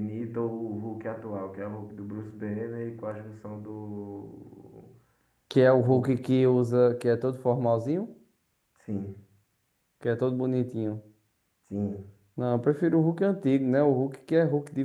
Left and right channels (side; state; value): both; identical; correlation 1.00